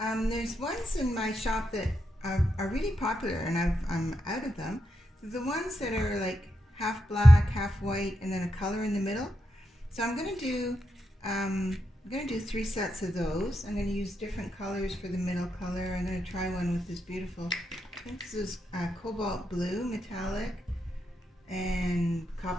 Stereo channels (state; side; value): normal; both; correlation 0.84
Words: ones in my shop that are really popular and I'm out of them. The ones that are like half black, half white, and then a color in the middle. So I'm going to do 3 sets of those. I'm going to use different colors for the middle color. I'm going to try one with this beautiful, I think this is cobalt blue metallic and